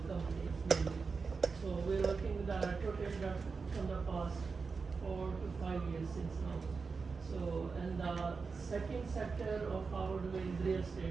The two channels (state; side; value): quieter; left; 4.8 dB